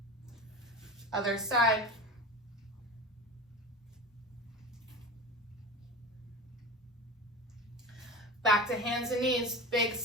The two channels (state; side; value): normal; both; correlation 0.30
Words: Other side. Back to hands and knees, big